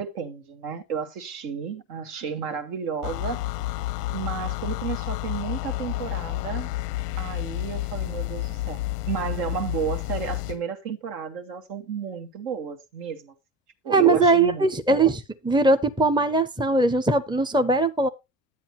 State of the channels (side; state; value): both; normal; correlation 0.25